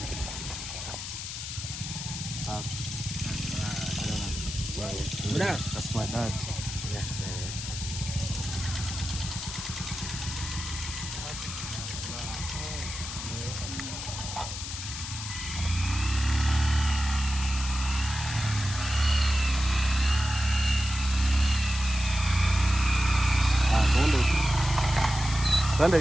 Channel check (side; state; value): left; noise; hiss, 7 dB below the sound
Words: That's my dad. Yeah. Twende